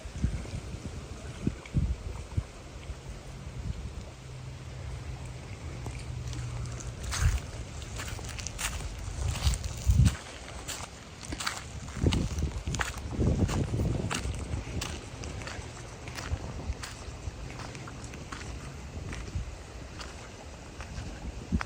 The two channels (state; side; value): identical; both; correlation 1.00